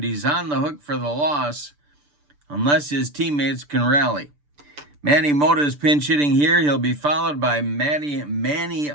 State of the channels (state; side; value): late; left; 6.8 ms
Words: He's on the hook for the loss unless his teammates can rally. Manny Mota's pinch hitting here. He'll be followed by Manny